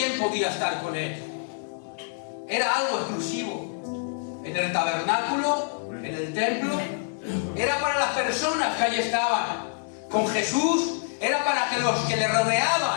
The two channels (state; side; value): silent; right; digital silence